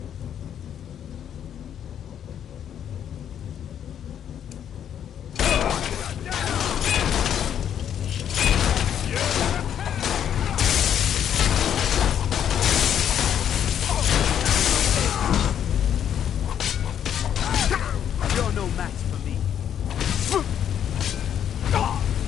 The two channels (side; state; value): right; quieter; 9.4 dB